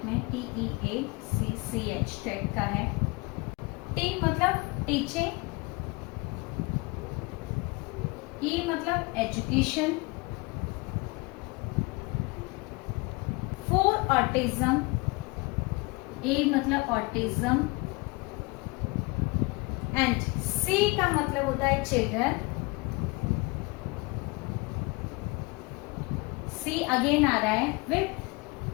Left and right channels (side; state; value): right; quieter; 26.4 dB